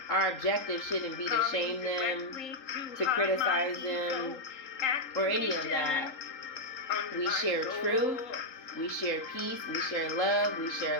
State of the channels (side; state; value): right; late; 3.8 ms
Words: our objective shouldn't be to shame them, to criticize them, or any of that. We share truth, we share peace, we share love, we